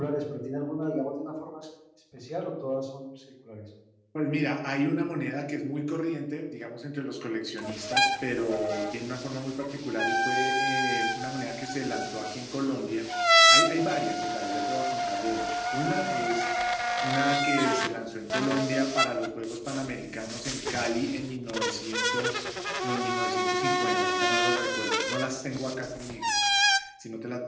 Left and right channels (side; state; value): both; identical; correlation 1.00